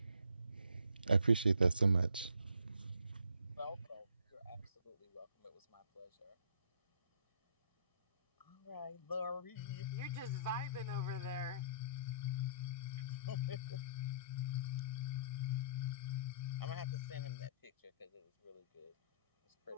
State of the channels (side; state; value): both; inverted; correlation -0.59